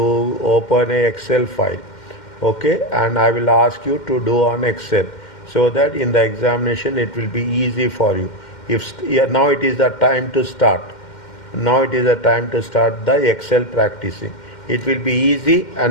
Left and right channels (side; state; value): right; late; 2.1 ms